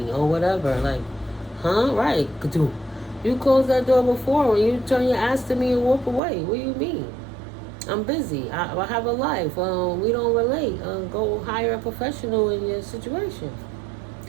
or whatever. Like, huh? Right. You closed that door before when you turn your ass to me and walk away. What do you mean? I'm busy. I have a life. We don't relate. Go hire a professional in your situation.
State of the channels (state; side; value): drops out; left; at 6.2 s